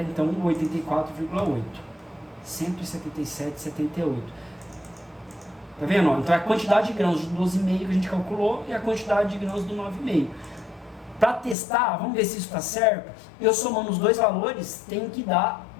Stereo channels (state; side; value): drops out; right; at 11.6 s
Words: então 84,8, 177,78. Tá vendo? Então é a quantidade de grãos de 12,5 que a gente calculou e a quantidade de grãos do 9,5. Para testar, vamos ver se isso está certo. Eu somando os dois valores, tem que dar